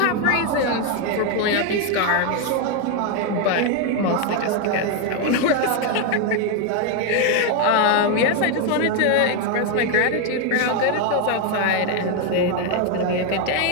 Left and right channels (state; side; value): different; both; correlation 0.01